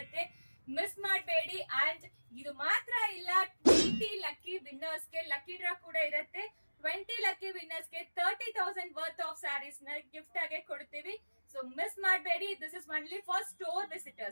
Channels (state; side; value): inverted; both; correlation -1.00